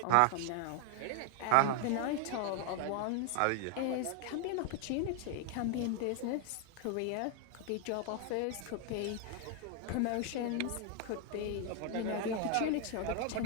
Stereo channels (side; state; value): both; different; correlation 0.00